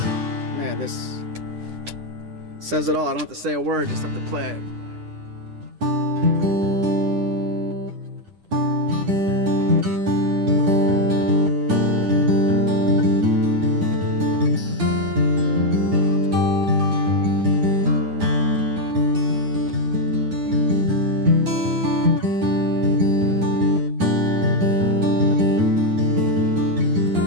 this says it all. I don't have to say a word, just have to play it.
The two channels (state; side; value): late; left; 10 ms